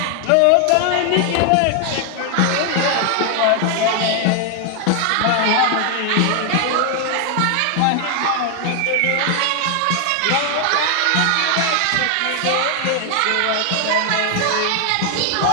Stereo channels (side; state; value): both; different; correlation 0.00